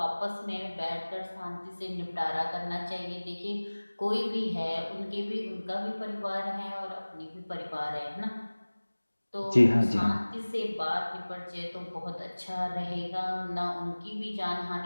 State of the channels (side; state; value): both; inverted; correlation -1.00